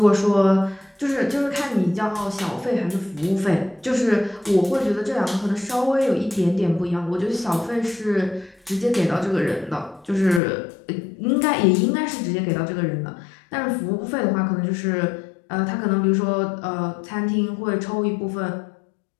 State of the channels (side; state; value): right; drops out; at 10.4 s